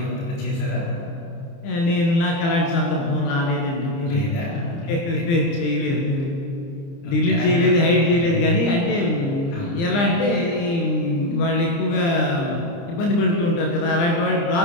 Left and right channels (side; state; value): right; late; 29 ms